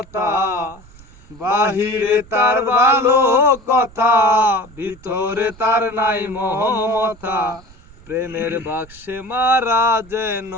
বাহিরে তার ভালো কথা, ভিতরে তার নাই মহমতা। প্রেমের বাক্সে মারা যেন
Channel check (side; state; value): right; noise; rumble, 23 dB below the sound